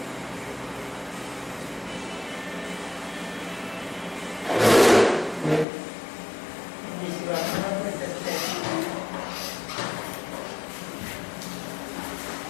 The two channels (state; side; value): drops out; right; at 5.7 s